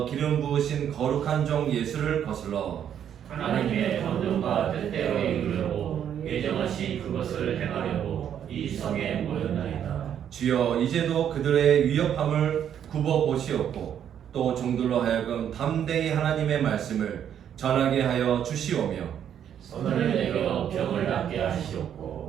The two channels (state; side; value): quieter; left; 9.3 dB